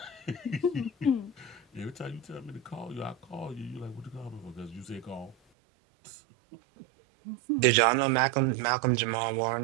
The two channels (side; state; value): left; drops out; at 5.4 s